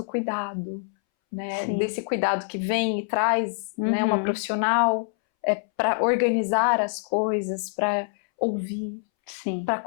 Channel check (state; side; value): silent; right; 61 dB below the other